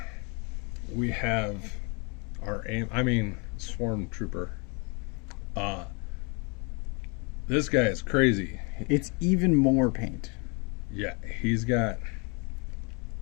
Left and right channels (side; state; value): right; quieter; 32.9 dB